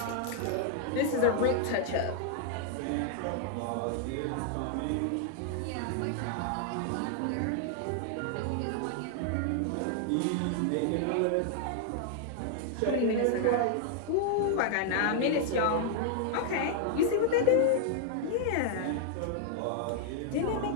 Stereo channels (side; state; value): both; different; correlation 0.00